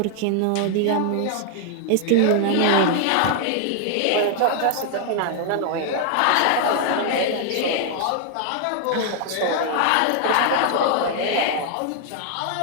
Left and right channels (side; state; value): both; different; correlation 0.00